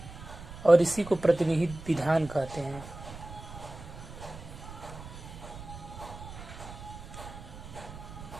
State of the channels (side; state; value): right; noise; rumble, 13 dB below the sound